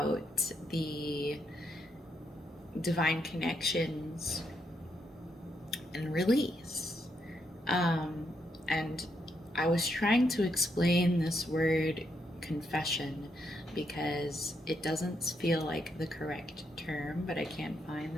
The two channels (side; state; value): both; normal; correlation 0.79